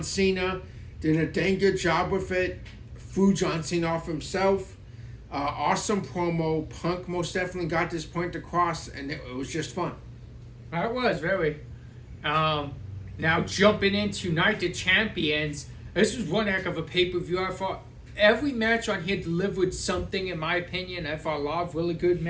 Cena. Did a dang good job with it. Threw John Cena off himself. Awesome promo. Punk most definitely got this point across, and it was just fun. That was very. Now jumping into Night of Champions, this was one heck of a pay-per-view. I thought every match on here delivered something, in my opinion. I thought a lot of really good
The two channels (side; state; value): both; identical; correlation 1.00